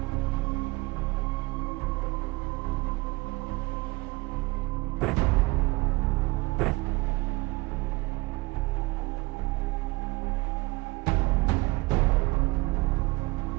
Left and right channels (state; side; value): quieter; left; 22.9 dB